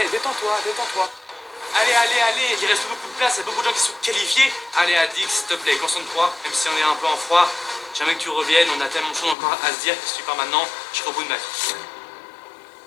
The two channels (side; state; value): right; drops out; at 9.3 s